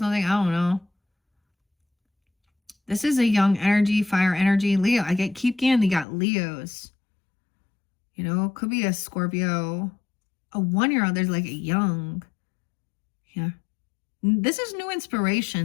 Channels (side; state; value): right; drops out; at 6.1 s